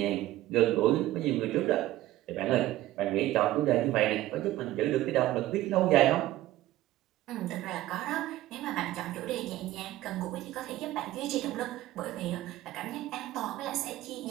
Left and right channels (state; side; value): quieter; left; 15.6 dB